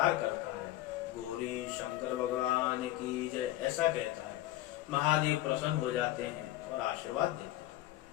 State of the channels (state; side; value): quieter; right; 15.1 dB